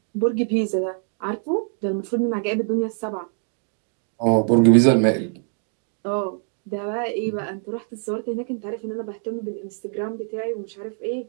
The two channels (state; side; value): silent; left; 62 dB below the other